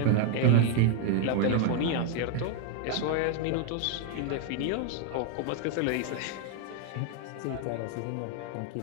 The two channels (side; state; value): both; different; correlation 0.00